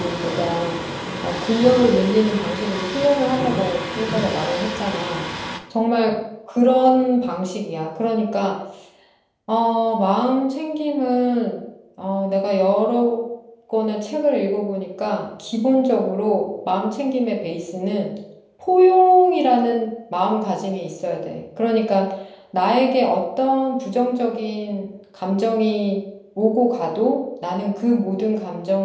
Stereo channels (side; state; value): both; identical; correlation 1.00